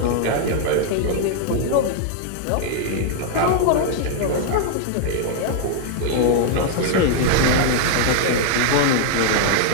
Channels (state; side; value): different; both; correlation 0.00